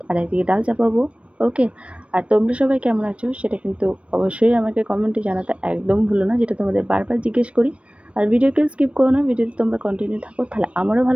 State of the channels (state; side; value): late; left; 0.062 ms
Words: আর একদিকে ডাল চাপাবো। ওকে, আর তোমরা সবাই কেমন আছো সেটা কিন্তু অবশ্যই আমাকে কমেন্টে জানাতে একদম ভুলো না, যেটা তোমাদের বারবার জিজ্ঞেস করি। আর ভিডিওকে স্কিপ করো না, ভিডিওতে তোমরা কন্টিনিউ থাকো, তাহলে আমারও